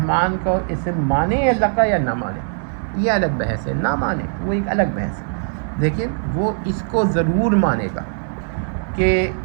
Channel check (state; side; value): silent; left; 58 dB below the other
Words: کو اسے مانے اللہ کا یا نہ مانے، یہ الگ بحث ہے. نہ مانے وہ ایک الگ بحث ہے، لیکن وہ اس کو ضرور مانے گا کہ